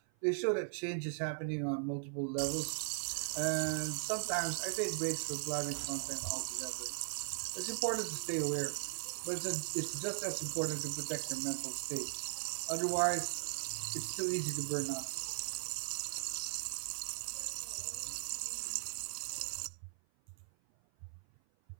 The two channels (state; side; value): silent; left; 52 dB below the other